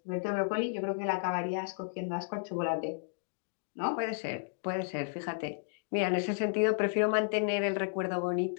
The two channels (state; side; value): silent; right; digital silence